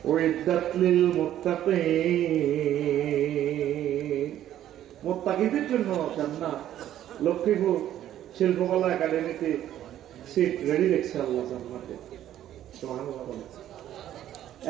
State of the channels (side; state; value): left; quieter; 11.9 dB